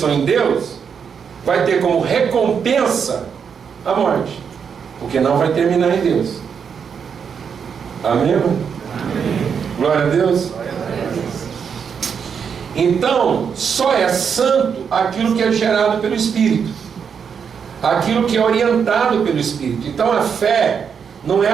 em Deus vai ter como recompensa a morte, porque não vai terminar em Deus. Amém? Amém. Glória a Deus. Então, só é santo aquilo que é gerado pelo Espírito, aquilo que é orientado pelo Espírito. Então a fé não é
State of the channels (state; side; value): quieter; left; 6.8 dB